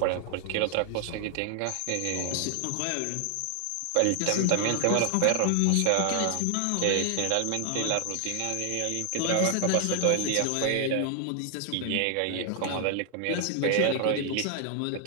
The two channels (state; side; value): different; both; correlation 0.00